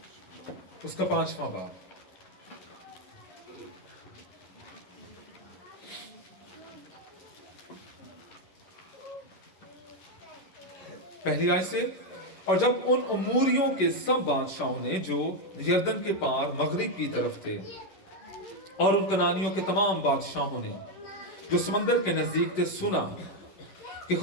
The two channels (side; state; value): right; late; 10 ms